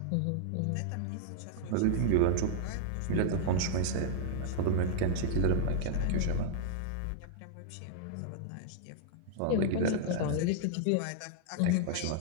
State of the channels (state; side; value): different; both; correlation -0.01